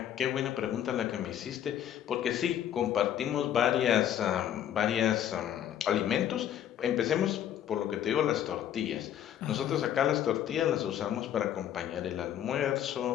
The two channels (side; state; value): right; quieter; 10.5 dB